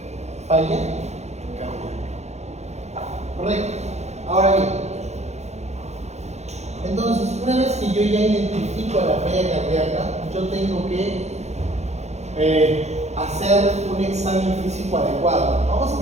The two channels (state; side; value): late; left; 0.32 ms